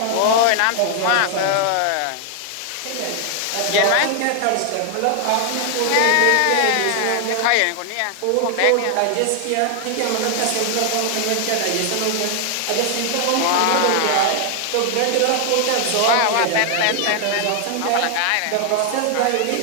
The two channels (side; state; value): both; different; correlation 0.00